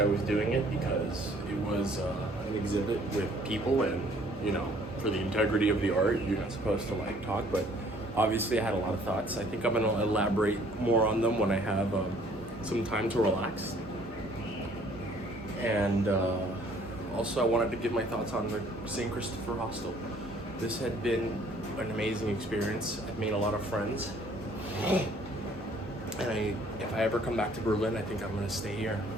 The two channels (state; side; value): normal; both; correlation 0.58